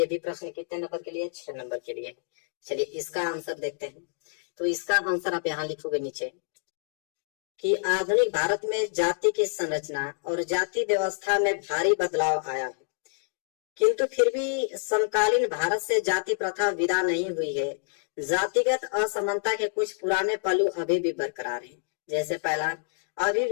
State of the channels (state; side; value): silent; right; digital silence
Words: भी प्रश्न कितने नंबर के लिए, 6 नंबर के लिए। चलिए इसका आंसर देखते हैं। तो इसका आंसर आप यहाँ लिखोगे नीचे कि आधुनिक भारत में जाति की संरचना और जाति व्यवस्था में भारी बदलाव आया है, किंतु फिर भी समकालीन भारत से जाति प्रथा विदा नहीं हुई है। जातिगत असमानता के कुछ पुराने पहलू अभी भी बरकरार हैं। जैसे पहला, अभी